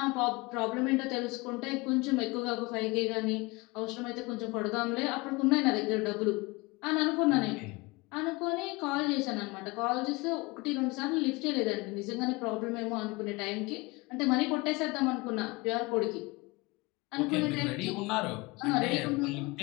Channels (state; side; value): quieter; right; 24.8 dB